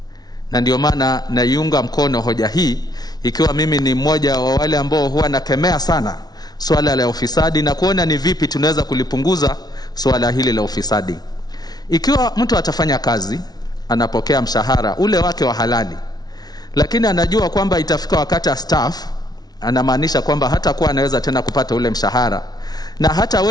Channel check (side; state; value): right; late; 0.19 ms